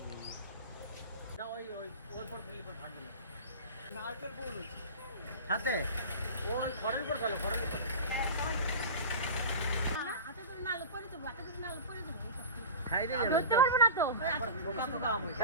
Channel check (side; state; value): both; inverted; correlation -0.31